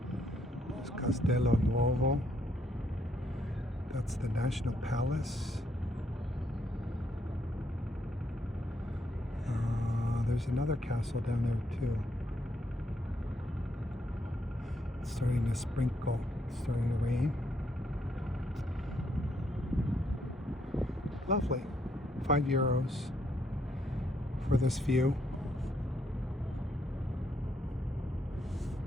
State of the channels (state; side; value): normal; both; correlation 0.74